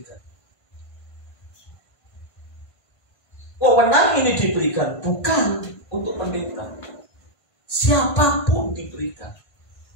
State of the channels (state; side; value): late; right; 1.5 ms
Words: Wewenang ini diberikan bukan untuk pendeta, siapapun diberikan.